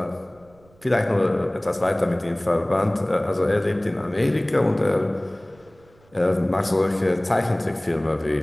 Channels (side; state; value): right; noise; rumble, 30 dB below the sound